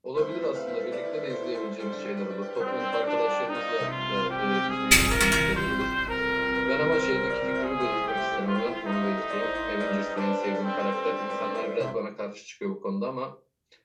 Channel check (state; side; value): identical; both; correlation 1.00